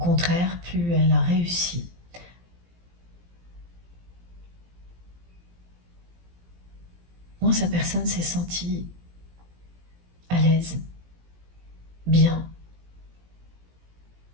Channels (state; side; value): late; left; 17 ms